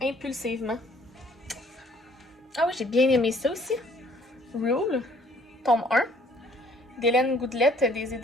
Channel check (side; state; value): both; normal; correlation 0.60